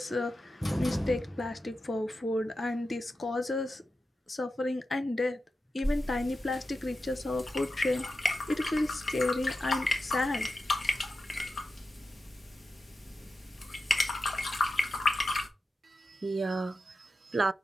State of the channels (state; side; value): normal; both; correlation 0.91